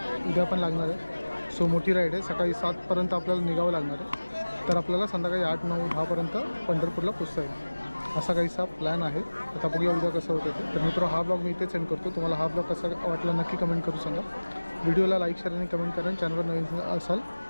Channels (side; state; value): both; inverted; correlation -1.00